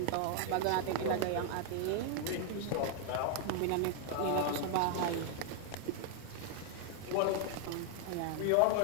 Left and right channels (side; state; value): both; different; correlation 0.00